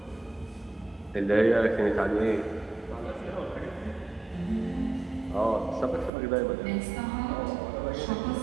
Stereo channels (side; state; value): left; drops out; at 6.1 s